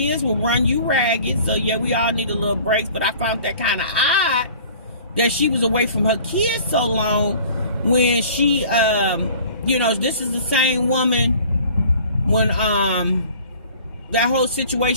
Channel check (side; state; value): both; inverted; correlation -0.48